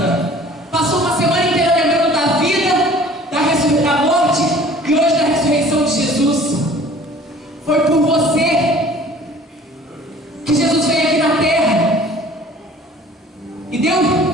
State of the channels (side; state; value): both; normal; correlation 0.49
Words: passou uma semana inteira lembrando da vida, da morte e hoje da ressurreição de Jesus. Foi por você que Jesus veio aqui na terra e deu